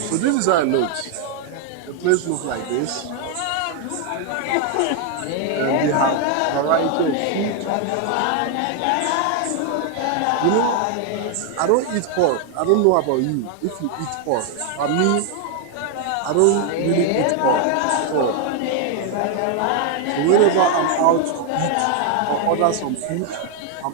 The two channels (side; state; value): both; different; correlation 0.00